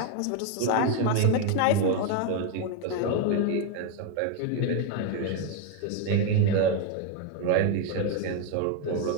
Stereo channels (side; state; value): both; different; correlation 0.01